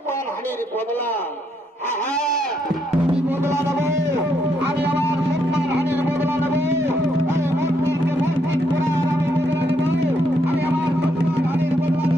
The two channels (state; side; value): normal; both; correlation 0.75